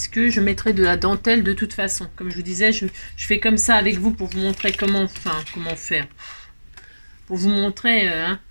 je mettrai de la dentelle de toute façon. Comme je vous disais, je fais comme ça avec vous pour vous montrer comment faire. Pour vous montrer, hein,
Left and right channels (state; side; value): inverted; both; correlation -1.00